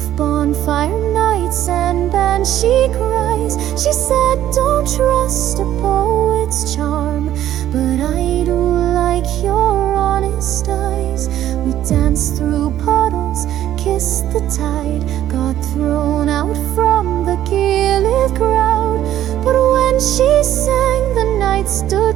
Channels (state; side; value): quieter; left; 12.2 dB